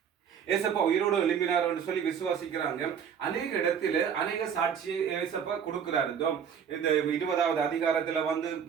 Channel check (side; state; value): left; quieter; 7.7 dB